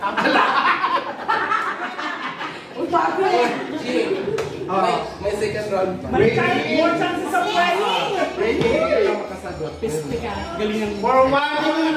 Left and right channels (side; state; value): both; identical; correlation 1.00